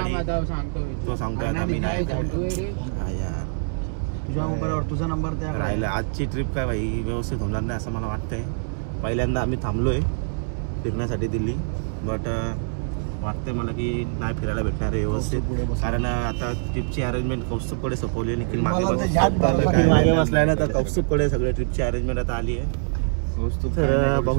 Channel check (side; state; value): left; silent; 62 dB below the other